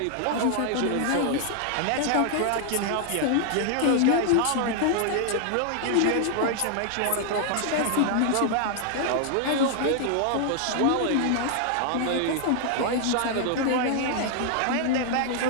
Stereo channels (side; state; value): both; different; correlation 0.00